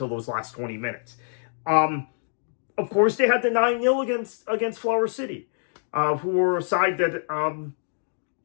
those last 20 minutes. Of course, they had the 9-0 against Flower City, who were a side that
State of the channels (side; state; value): right; silent; digital silence